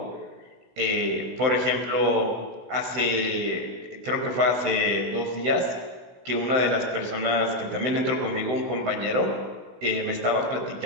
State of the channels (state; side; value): late; left; 16 ms